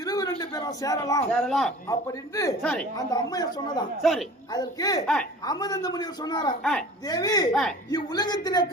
பேரும் சேரலாம் அப்படின்னு சரி அந்த அம்மையார் சொன்னதாம். சரி அதற்கு ஆ. அமிர்த முனிவர் சொன்னாராம், ஆ. தேவி ஆ. இவ்வுலகத்திலே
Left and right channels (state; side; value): normal; both; correlation 0.42